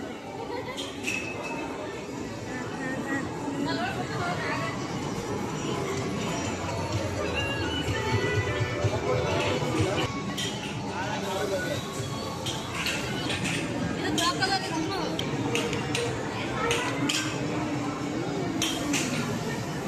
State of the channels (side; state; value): both; identical; correlation 1.00